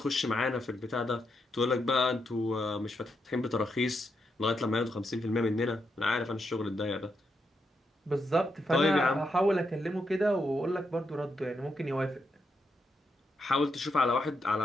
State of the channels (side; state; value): both; normal; correlation 0.82